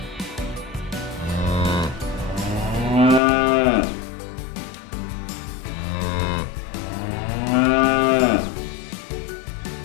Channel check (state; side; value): drops out; right; at 3.2 s